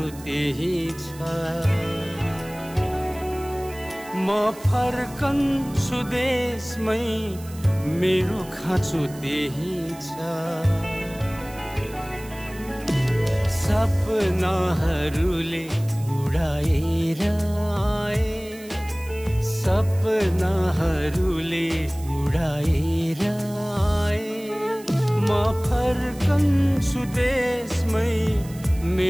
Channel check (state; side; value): noise; right; hiss, 20 dB below the sound